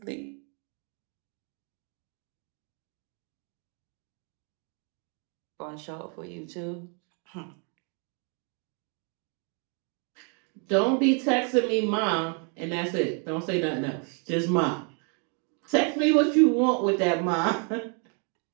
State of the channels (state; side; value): quieter; left; 38.9 dB